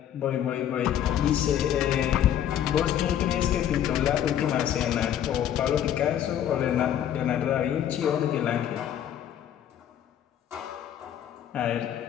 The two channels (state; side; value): quieter; right; 10.4 dB